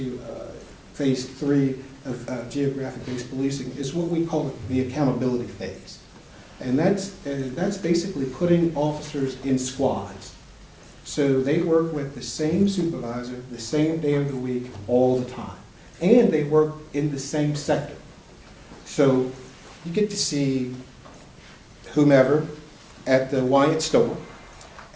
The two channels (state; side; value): identical; both; correlation 1.00